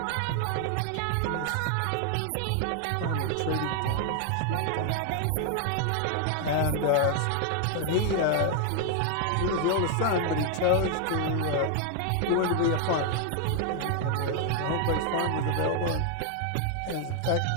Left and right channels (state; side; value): different; both; correlation 0.00